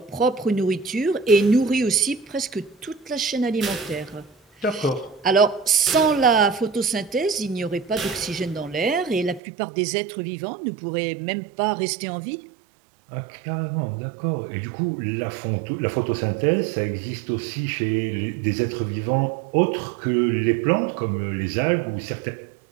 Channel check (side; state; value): left; drops out; at 9.4 s